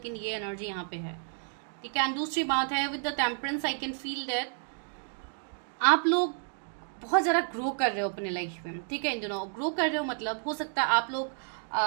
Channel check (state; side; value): silent; left; 57 dB below the other